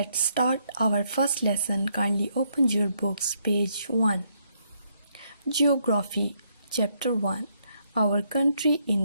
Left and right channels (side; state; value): both; inverted; correlation -0.74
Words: start our first lesson. Kindly open your books, page 1. Geography, Chapter 1. Our country